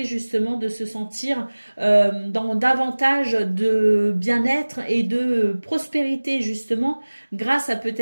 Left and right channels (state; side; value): inverted; both; correlation -1.00